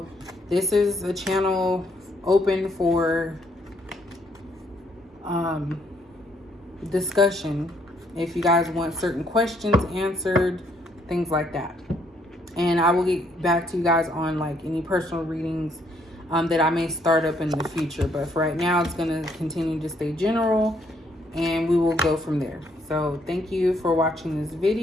this is a channel open for discussion. If you guys want certain questions answered, things like that. And I will get back to you guys on like any personal readings that I may start up in the future. But for right now, it's going to continue to stay general, and we will go from there. So thank you for watching this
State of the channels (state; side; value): normal; both; correlation 0.69